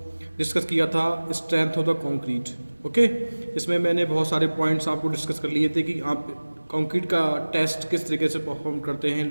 डिस्कस किया था strength of the concrete. Okay, इसमें मैंने बहुत सारे पॉइंट्स आपको डिस्कस कर लिए थे कि आप कंक्रीट का टेस्ट किस तरीके से परफॉर्म करते हैं,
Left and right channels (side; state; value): both; inverted; correlation -1.00